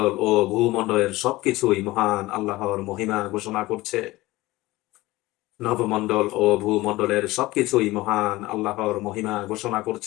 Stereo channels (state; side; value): quieter; right; 19.2 dB